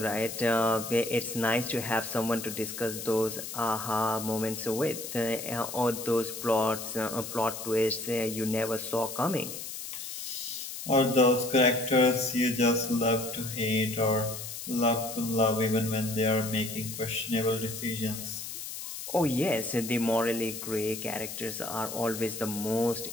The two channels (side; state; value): left; noise; hiss, 8 dB below the sound